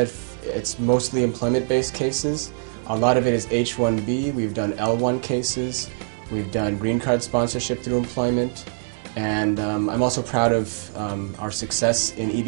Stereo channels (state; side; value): silent; left; digital silence